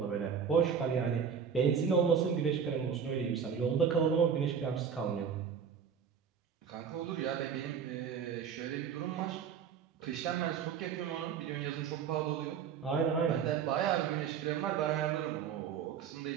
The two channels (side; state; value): left; quieter; 7.2 dB